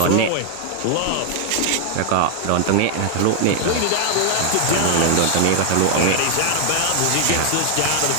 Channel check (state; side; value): different; both; correlation 0.00